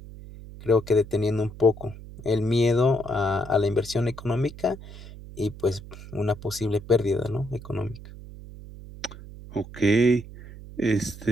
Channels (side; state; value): right; noise; hum, 15 dB below the sound